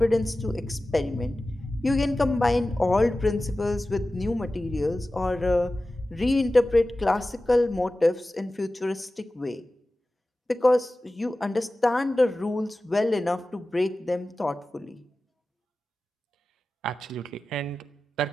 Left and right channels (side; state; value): both; normal; correlation 0.95